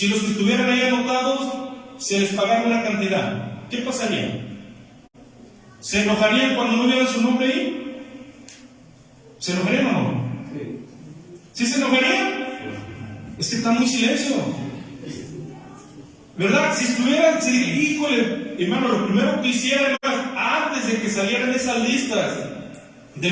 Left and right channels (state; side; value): identical; both; correlation 1.00